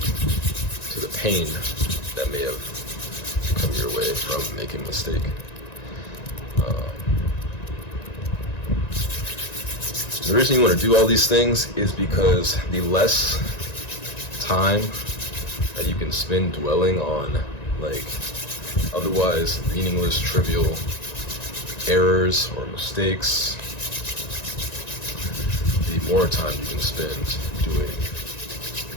to the pain that may have come your way from making a mistake. The reason you want to do all these things is because the less time that you can spend dwelling on like otherwise meaningless, trivial errors or mistakes, the more time you can spend doing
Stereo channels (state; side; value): late; right; 1.9 ms